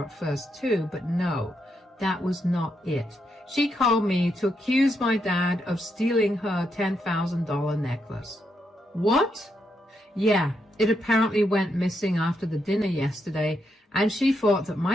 at first too, but no, that was not it. She called me to accuse my dad of stealing her $10,000 necklace. What? Yeah, it apparently went missing after the dinner yesterday, and she thought that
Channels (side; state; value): both; normal; correlation 0.81